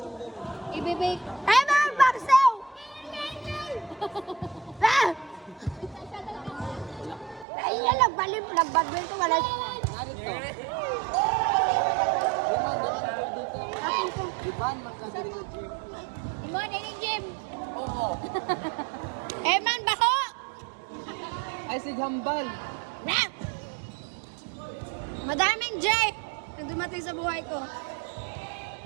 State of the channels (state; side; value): drops out; left; at 7.5 s